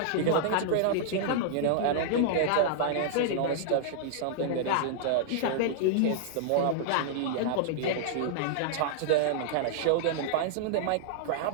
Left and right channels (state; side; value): different; both; correlation -0.01